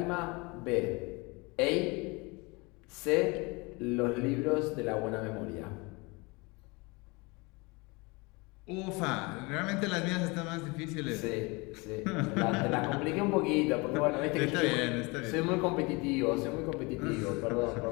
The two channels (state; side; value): quieter; right; 26.8 dB